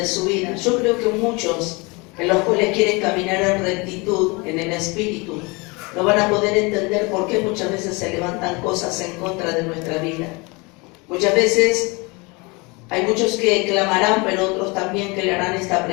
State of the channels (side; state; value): right; quieter; 27.2 dB